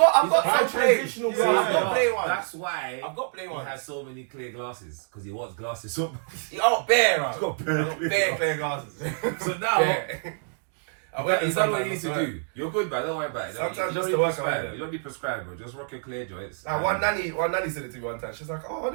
Buy some plain. transitional I've glasses. got plain ones. That's why I've got plain he ones. has so many clear glasses because he wants glasses so Oh, bare, He's bro. got bare Bare clear glasses. So now Bare. I wear them is that what you sometimes, need to I swear. do? You're good, but don't worry about it. Sometimes you just don't to need work prescribe. away. You don't need prescribe, bro. Just rock your clear joints. Nah, one nanny said it to me one time. She's like, "Oh, I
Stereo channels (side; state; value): left; silent; digital silence